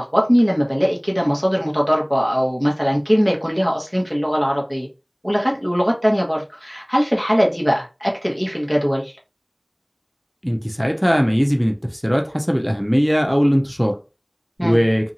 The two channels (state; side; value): identical; both; correlation 1.00